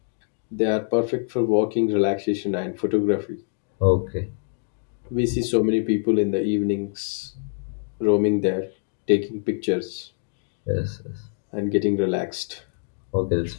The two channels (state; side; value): silent; right; 62 dB below the other